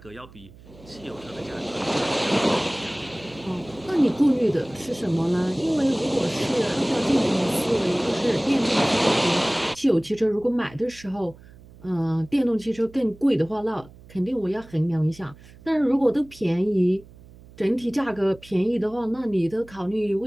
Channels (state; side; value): noise; right; hum, 22 dB below the sound